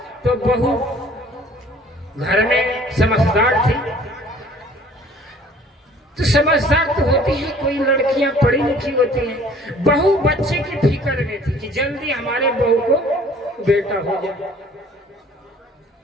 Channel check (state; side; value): normal; both; correlation 0.53